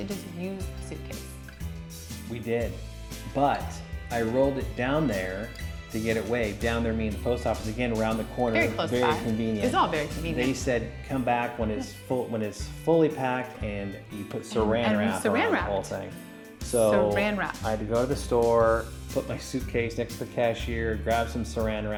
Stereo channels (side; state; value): both; identical; correlation 1.00